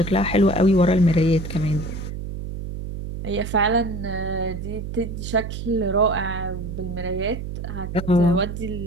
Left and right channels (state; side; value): noise; right; hum, 7 dB below the sound